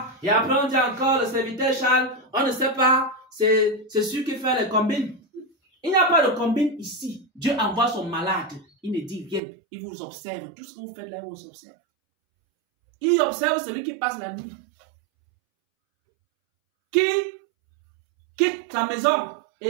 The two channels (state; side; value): drops out; left; at 9.4 s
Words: Et après, on dit encore le serviteur Charles. On ne sait pas. C'est celui qui fait les combines. Il n'y a pas de combine ici. Dieu envoie son malade. Il ne dit rien. Il vous observe. Tout ce que vous faites là, il vous observe. Il observe celui qui passe la nuit. Qui quitte sa maison